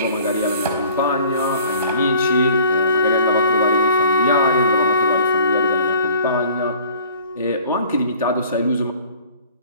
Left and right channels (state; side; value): inverted; both; correlation -0.50